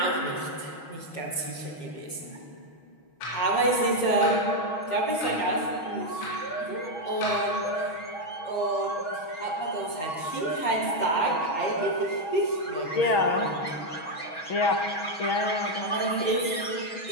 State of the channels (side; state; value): right; late; 6.3 ms